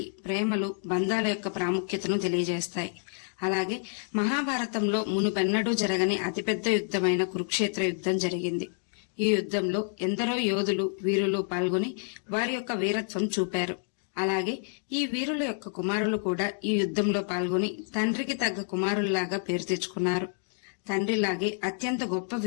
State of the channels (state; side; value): silent; right; 58 dB below the other